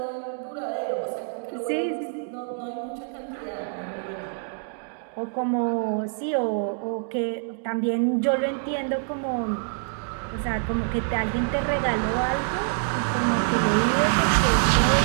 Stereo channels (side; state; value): left; silent; 61 dB below the other